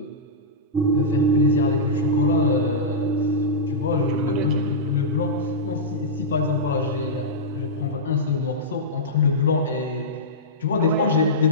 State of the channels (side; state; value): both; normal; correlation -0.14